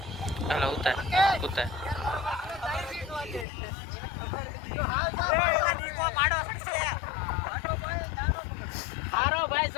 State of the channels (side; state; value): right; drops out; at 3.5 s